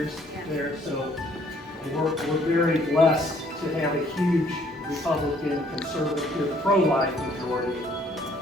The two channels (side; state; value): both; normal; correlation 0.62